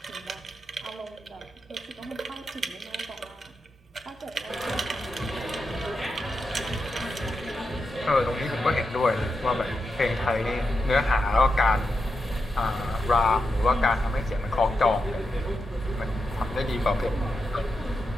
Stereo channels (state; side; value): normal; both; correlation 0.87